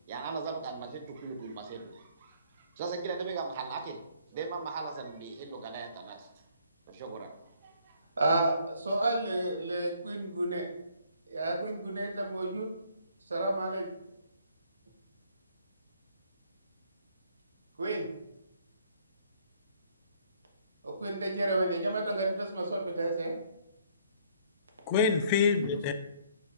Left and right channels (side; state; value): both; inverted; correlation -0.63